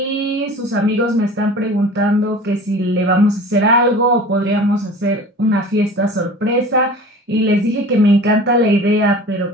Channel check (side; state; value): both; normal; correlation 0.40